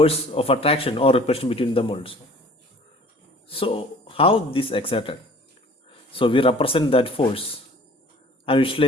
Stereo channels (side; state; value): both; normal; correlation 0.49